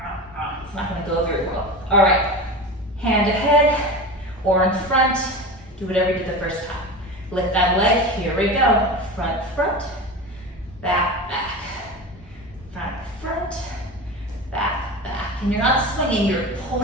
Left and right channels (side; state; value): both; normal; correlation 0.28